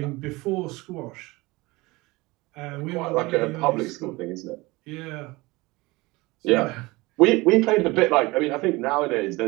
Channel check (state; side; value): quieter; left; 22.3 dB